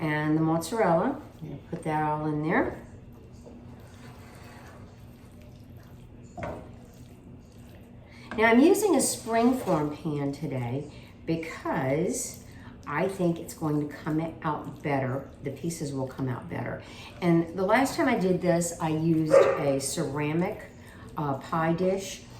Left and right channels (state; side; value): identical; both; correlation 1.00